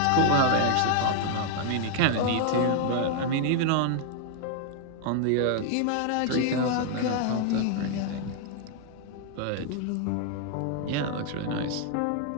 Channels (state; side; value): different; both; correlation 0.00